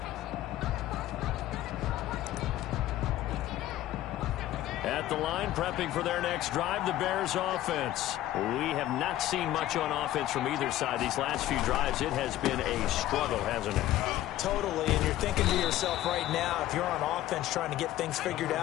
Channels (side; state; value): right; quieter; 14.1 dB